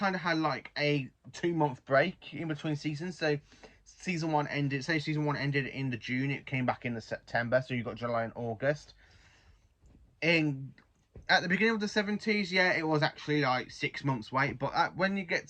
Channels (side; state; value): both; identical; correlation 1.00